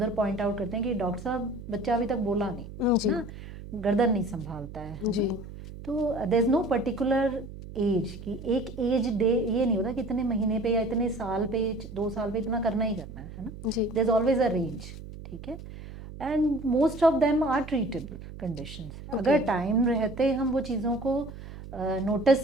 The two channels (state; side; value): noise; right; hum, 13 dB below the sound